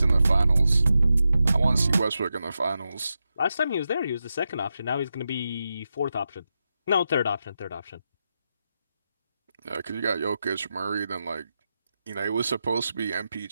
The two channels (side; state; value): both; inverted; correlation -0.88